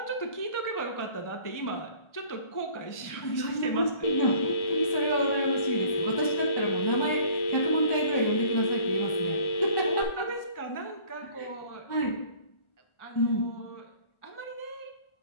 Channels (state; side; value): late; right; 1.4 ms